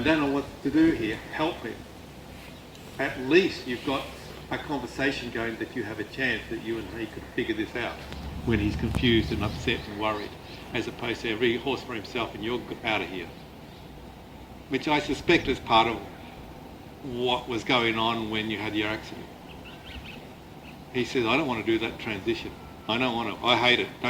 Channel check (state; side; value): identical; both; correlation 1.00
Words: don't know what to do here, help me, at least you've got a conversation going that you have a chance that you and he could figure this out when he's confused and upset and worried, as opposed to every horse for himself and you're out of here. Which I suspect is part of what was going on when you had your accident. He says, I don't want to do that transition. I don't want to. I hate it.